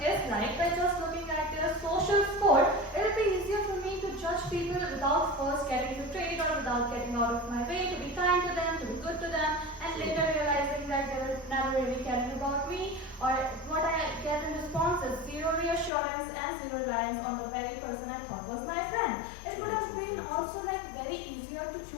is like by just looking at their social score, it would be easier for me to judge people without first getting betrayed or without getting out of my way to be kind to them, to be good to them, and later realizing that they were never really caring about me, or what I get in response is zero reassurance and zero reliance on the very person I thought was my friend. It would have been also like very easier to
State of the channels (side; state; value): right; drops out; at 15.9 s